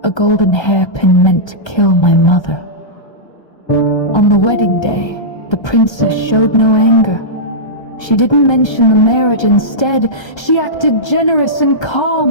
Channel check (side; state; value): right; late; 1.3 ms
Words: A golden hairpin meant to kill my mother. On the wedding day, the princess showed no anger. She didn't mention the marriage. Instead, she acted generous and